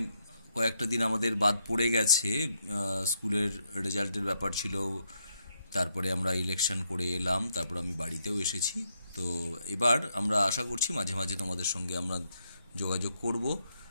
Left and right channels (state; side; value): inverted; both; correlation -0.78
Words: কয়েকটা দিন আমাদের বাদ পড়ে গেছে, স্কুলের রেজাল্টের ব্যাপার ছিল, তারপরে আমরা ইলেকশন করে এলাম, তারপর আমি বাড়িতেও এসেছি। তো এবার আমরা আশা করছি মাঝে মাঝে তোমাদের সঙ্গে আমরা যোগাযোগ করব,